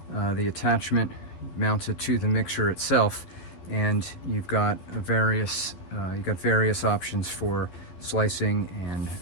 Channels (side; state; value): right; late; 11 ms